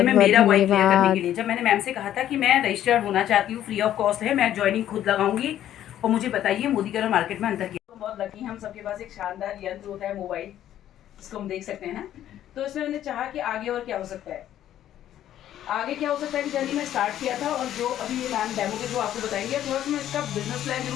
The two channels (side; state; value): right; quieter; 11.7 dB